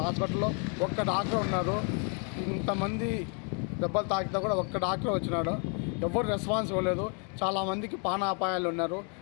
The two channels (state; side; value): quieter; right; 38.7 dB